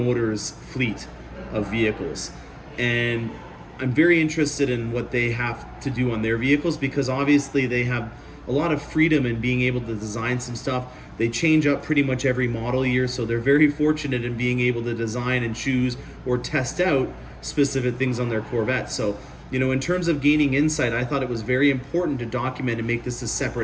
fleet of vehicles. And I'm very interested in what they have to do on their vehicles because obviously they have a lot of freedom in being able to design some stuff. They change up pretty much every model year, so they're very fortunate in being able to design and choose or test out specific things on their Corvette. So, you know, in terms of gaining insight, I thought it was very important to document and make this a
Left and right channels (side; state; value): both; identical; correlation 1.00